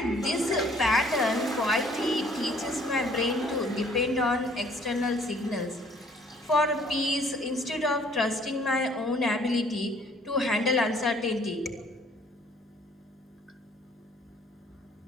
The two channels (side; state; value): both; normal; correlation 0.59